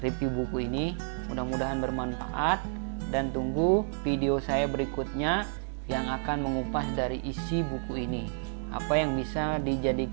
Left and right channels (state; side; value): silent; left; 58 dB below the other